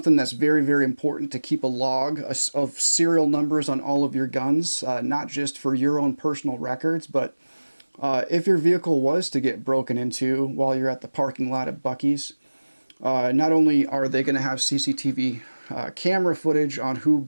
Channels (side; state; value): both; inverted; correlation -1.00